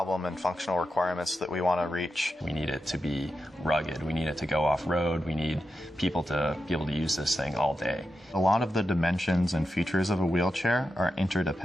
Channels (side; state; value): both; normal; correlation 0.89